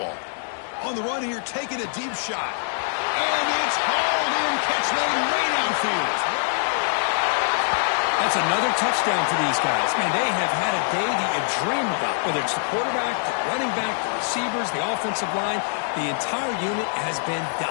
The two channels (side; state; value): right; silent; digital silence